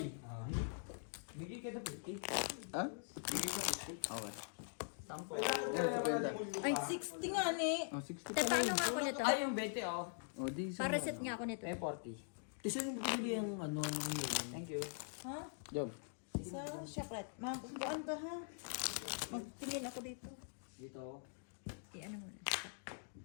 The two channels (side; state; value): right; silent; digital silence